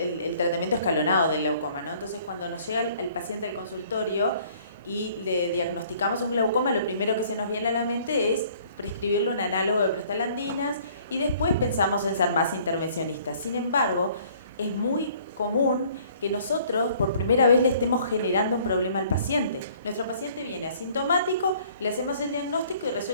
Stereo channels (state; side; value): inverted; both; correlation -0.57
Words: tratamiento escalonado del glaucoma, ¿no? Entonces, cuando nos llega el paciente al consultorio y le diagnosticamos un glaucoma, lo primero que se nos viene a la mente es prescribirle un análogo de prostaglandinas y después pensamos en ser más intervencionistas. Sin embargo, es muy común que nosotros por primera vez le estemos generando un problema al paciente. Nuestro paciente viene asintomático, le hacemos el diagnóstico y